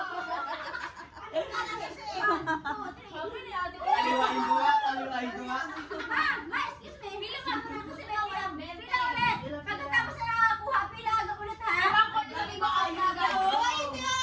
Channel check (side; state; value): both; identical; correlation 1.00